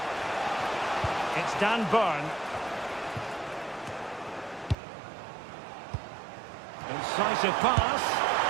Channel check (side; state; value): left; drops out; at 4.8 s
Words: It's Dan Burn. Incisive pass.